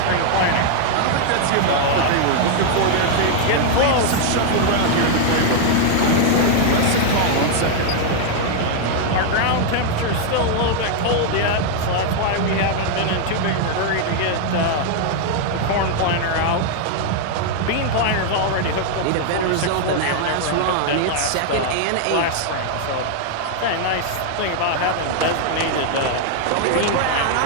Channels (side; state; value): both; different; correlation 0.00